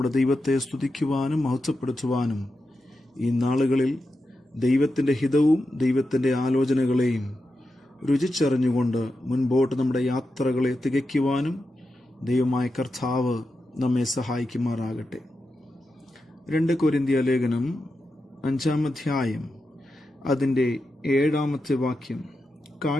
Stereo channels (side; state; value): both; normal; correlation 0.89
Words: ദൈവത്തെ സ്തുതിക്കുവാനും മഹത്വപ്പെടുത്തുവാനും ഈ നാളുകളിൽ ദൈവത്തിൻ്റെ ഹിതവും ദൈവത്തിൻ്റെ ആലോചനകളെയും രുചിച്ചറിഞ്ഞുകൊണ്ട് മുൻപോട്ട് നമ്മുടെ യാത്രകളെ തികയ്ക്കുവാനും ദൈവമായ കർത്താവ് നമ്മെ സഹായിക്കുമാറാകട്ടെ. 2 കൊരിന്ത്യർ ലേഖനം 5-ാം അധ്യായം അതിൻ്റെ 7-ാമത്തെ വാക്യം,